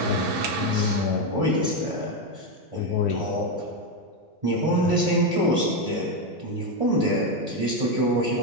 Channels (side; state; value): both; normal; correlation 0.08